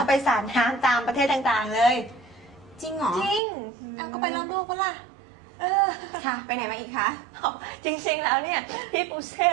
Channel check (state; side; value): drops out; left; at 3.4 s